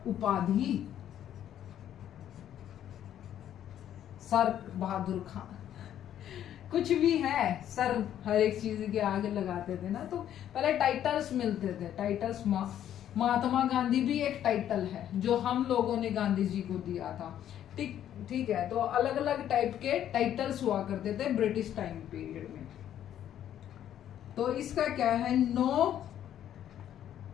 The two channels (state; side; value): quieter; right; 10.8 dB